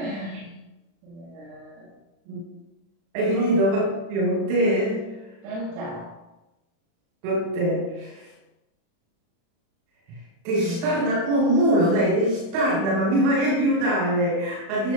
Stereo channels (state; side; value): late; left; 36 ms